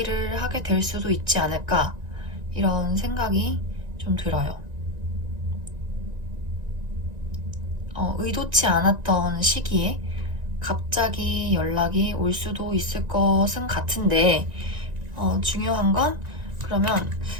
하게 될 수도 있지 않을까, 이런 생각이 좀 들어요. 의도치 않았던 시기에 갑자기 연락이 올 수도 있을 것은 같은데, 중요한 건 그러면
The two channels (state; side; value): late; left; 1.9 ms